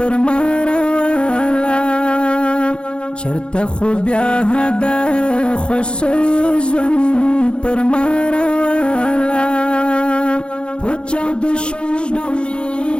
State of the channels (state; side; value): late; right; 0.055 ms